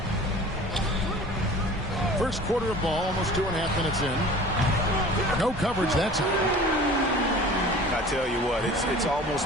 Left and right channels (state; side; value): normal; both; correlation 0.43